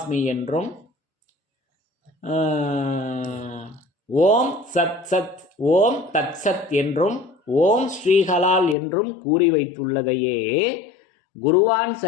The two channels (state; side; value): drops out; right; at 8.8 s